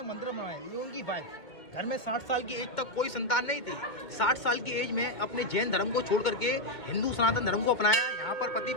मंदिर बनाया। ये उनकी वाइफ, घर में 60 साल की एज तक कोई संतान नहीं थी। 60 साल की एज में अपने जैन धर्म को छोड़ करके हिंदू सनातन धर्म को अपनाया। यहाँ पर पति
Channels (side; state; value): right; late; 2.1 ms